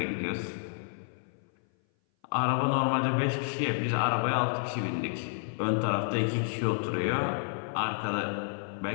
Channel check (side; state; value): right; silent; 56 dB below the other